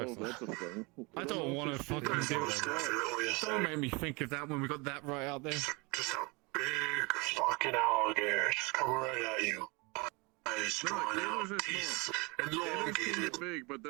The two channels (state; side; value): quieter; left; 27.6 dB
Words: if Texas. That's a thing. I don't want to fucking do it. Don't make me think of that when we got that right out there. Just a big fucking alligator just coming right at you. Eyes drawn out, teeth Gators elongated. get big, but